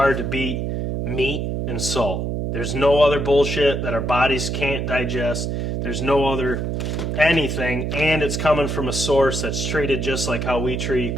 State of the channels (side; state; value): right; noise; hum, 2 dB below the sound